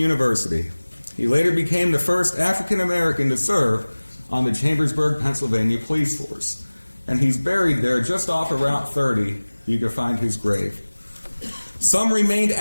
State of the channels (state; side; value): inverted; both; correlation -1.00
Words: He later became the first African American to serve on the Chambersburg, Pennsylvania police force. And he's buried there just off of Route 30. You can find his grave. Some remained